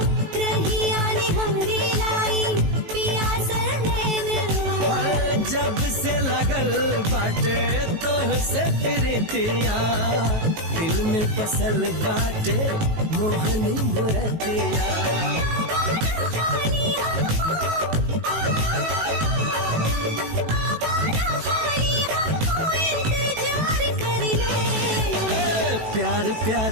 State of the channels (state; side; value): late; left; 19 ms